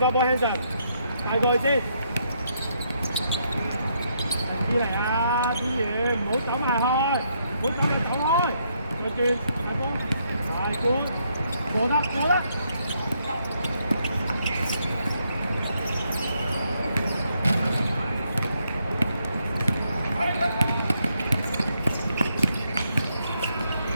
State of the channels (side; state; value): both; inverted; correlation -0.75